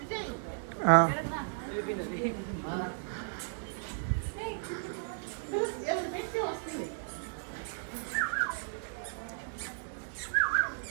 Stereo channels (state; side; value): silent; left; digital silence